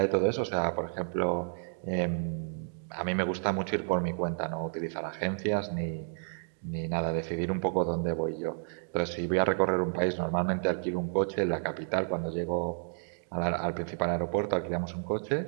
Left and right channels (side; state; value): left; silent; digital silence